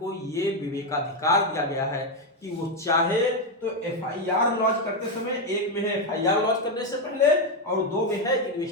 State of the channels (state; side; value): normal; both; correlation 0.06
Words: ये विवेकाधिकार दिया गया है कि वो चाहे तो एफआईआर लॉन्च करते समय, एक में है एफआईआर लॉन्च करने से पहले और 2 में है